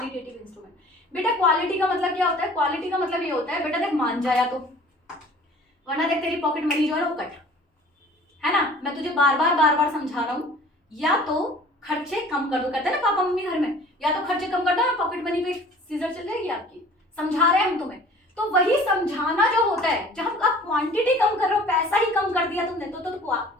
इंस्ट्रूमेंट। बेटा क्वालिटी का मतलब क्या होता है, क्वालिटी का मतलब ये होता है, बेटा देख मान जाया तो, वरना देख तेरी पॉकेट मनी जो है वो कट, है ना, मैं तुझे बार बार समझा रहा हूं, या तो खर्चे कम कर दो, कहते हैं ना पापा मम्मी घर में, या तो खर्चे कम कर दो, पॉकेट मनी पे सीजर चल जाएगी आपकी। समझा रहे हैं हम तुम्हें, तो वही समझाना जो होता है, जब आप क्वांटिटी कम कर रहे हो, पैसा ही कम कर दिया तुमने तो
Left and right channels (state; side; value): normal; both; correlation 0.48